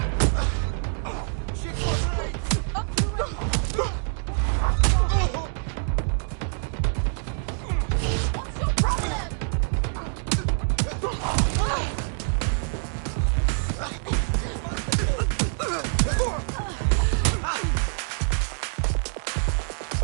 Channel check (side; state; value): left; silent; 61 dB below the other